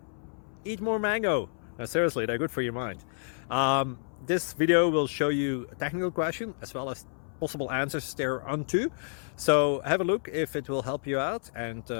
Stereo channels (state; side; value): silent; right; 58 dB below the other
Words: Eat more mango. No, seriously, they're good for your mind. This video will show you a technical question as well as possible answers thereunto. So have a look if it will help you out, and